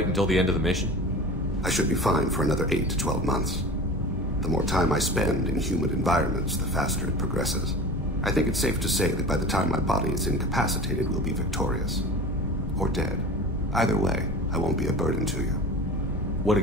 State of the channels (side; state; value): both; normal; correlation 0.35